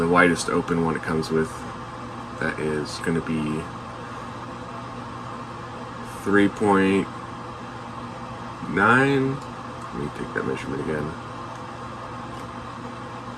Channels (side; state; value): both; identical; correlation 1.00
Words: widest open one it comes with, that is going to be 3.9. Let me take that measurement again.